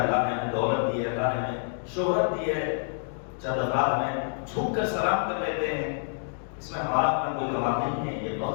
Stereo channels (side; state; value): right; silent; digital silence